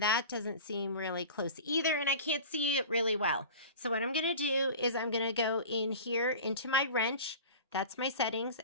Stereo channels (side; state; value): both; inverted; correlation -0.36